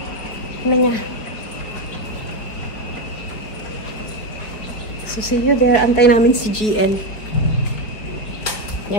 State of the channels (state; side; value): late; right; 5.0 ms